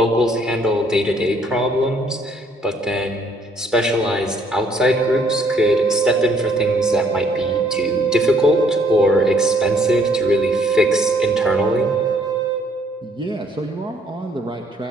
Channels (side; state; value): both; normal; correlation 0.65